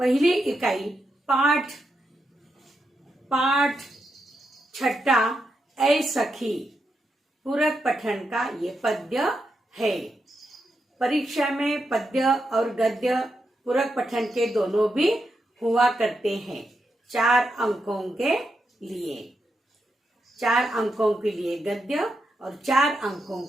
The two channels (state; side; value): normal; both; correlation 0.85